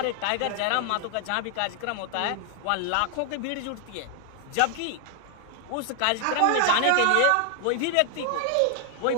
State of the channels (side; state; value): both; different; correlation 0.00